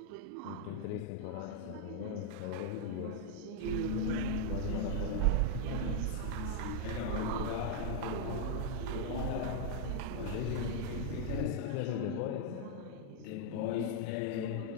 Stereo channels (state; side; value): different; both; correlation 0.00